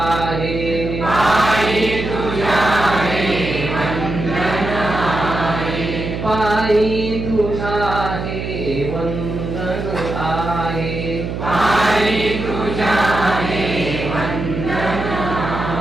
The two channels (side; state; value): right; noise; hum, 5 dB below the sound